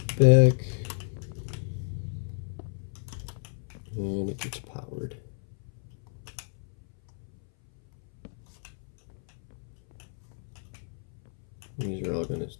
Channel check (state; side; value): silent; right; 57 dB below the other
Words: back. And it gets powered. These are all going